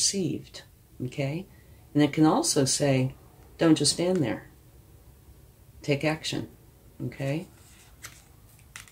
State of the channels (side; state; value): both; identical; correlation 1.00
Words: Okay? And it can also say, don't just stand there. Take action. Okay?